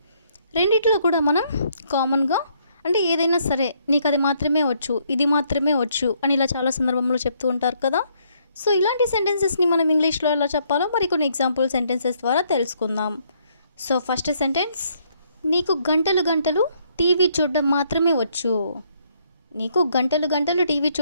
రెండిట్లో కూడా మనం కామన్గా అంటే ఏదైనా సరే నీకు అది మాత్రమే వచ్చు, ఇది మాత్రమే వచ్చు అని ఇలా చాలా సందర్భంలో చెప్తూ ఉంటారు కదా. సో ఇలాంటి సెంటెన్సెస్ని మనం ఇంగ్లీష్లో ఎలా చెప్పాలో మరి కొన్ని ఎగ్జాంపుల్ సెంటెన్సెస్ ద్వారా తెలుసుకుందాం. సో ఫస్ట్ సెంటెన్స్, నీకు గంటలు గంటలు టీవీ చూడడం మాత్రమే వచ్చు. నీకు గంటలు గంటలు టీవీ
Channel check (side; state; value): both; inverted; correlation -0.69